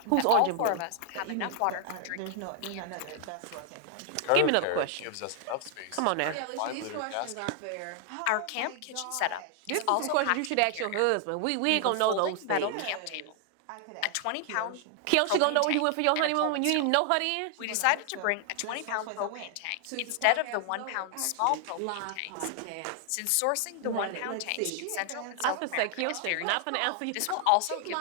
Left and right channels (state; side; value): different; both; correlation 0.00